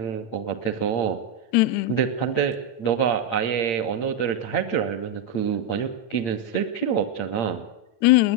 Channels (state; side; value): late; right; 8.8 ms